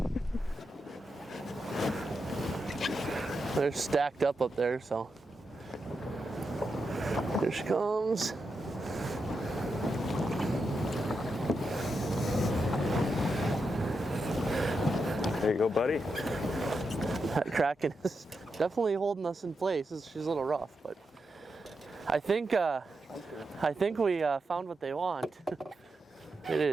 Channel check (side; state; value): both; normal; correlation 0.86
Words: They're stacked up there, so. Here she comes. There you go, buddy. That Kraken is definitely holding us in place. She's a little rough, but I think we found what they want. It